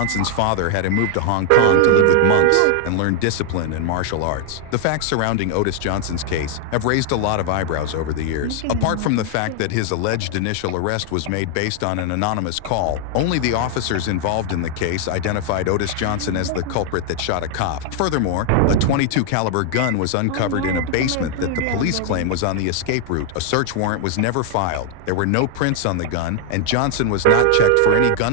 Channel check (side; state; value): both; different; correlation 0.00